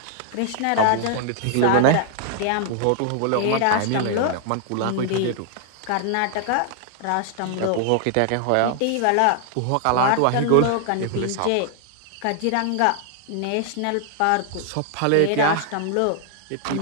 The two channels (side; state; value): both; different; correlation 0.00